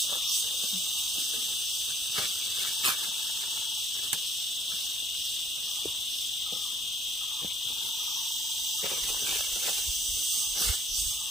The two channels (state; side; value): normal; both; correlation 0.60